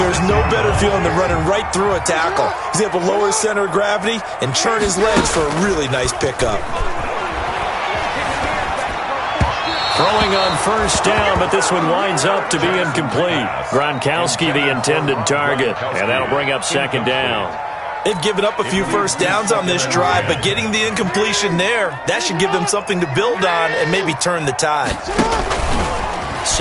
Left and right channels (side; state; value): both; identical; correlation 1.00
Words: no better feeling than running right through a tackle. He's able to lower his center of gravity and churn his legs for a really nice pickup. Throwing on 1st down, but this one winds up to be incomplete. Gronkowski the intended target, and that'll bring up 2nd down. They've given up a few 1st downs on this drive, but getting the incompletion there, that should give them something to build on and maybe turn the tide.